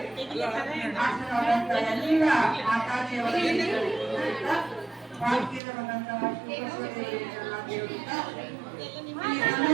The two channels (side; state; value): left; drops out; at 5.6 s